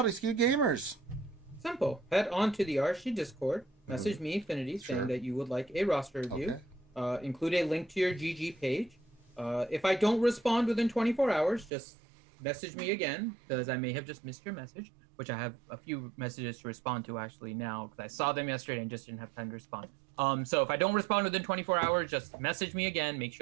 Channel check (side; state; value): left; drops out; at 11.7 s